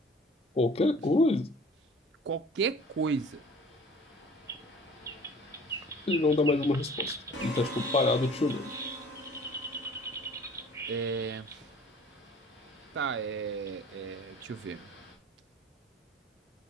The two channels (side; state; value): both; normal; correlation 0.48